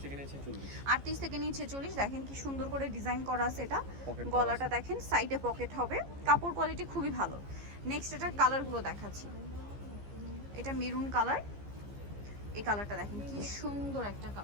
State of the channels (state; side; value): late; left; 15 ms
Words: থেকে নিয়ে 46। 38 থেকে নিয়ে 46। দেখেন কি সুন্দর করে ডিজাইন করা আছে এটা। গলাটা দেখেন, সাইডে পকেট হবে, কাপড় কোয়ালিটি খুবই ভালো। নেক্সট এটার কালারগুলো দেখাচ্ছি। এটা মেরুন কালার, এই কালারটা দেখেন কি সুন্দর একটা